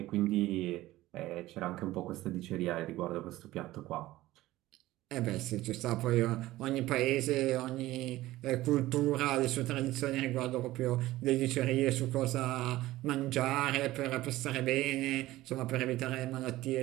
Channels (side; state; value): left; quieter; 16.7 dB